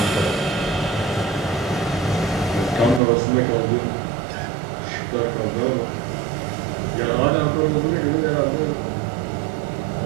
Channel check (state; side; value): drops out; left; at 3.0 s